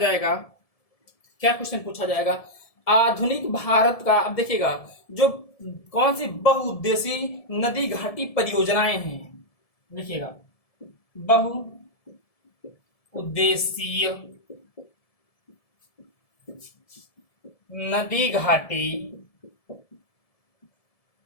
क्या क्वेश्चन पूछा जाएगा? आधुनिक भारत का, अब देखिएगा, जो कौन सी बहुउद्देशीय नदी घाटी परियोजनाएं हैं, देखिएगा बहु उद्देशीय नदी घाटी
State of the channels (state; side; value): late; right; 1.7 ms